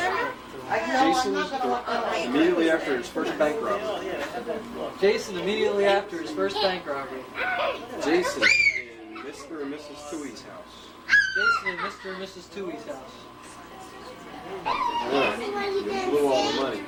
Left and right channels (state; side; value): identical; both; correlation 1.00